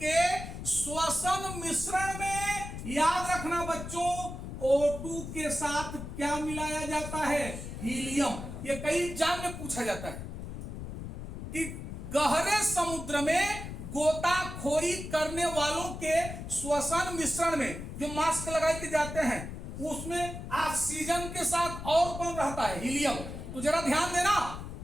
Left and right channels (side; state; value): left; noise; rumble, 8 dB below the sound